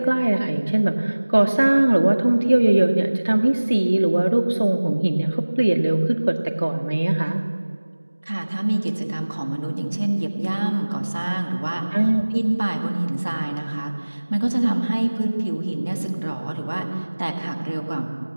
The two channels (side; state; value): both; inverted; correlation -1.00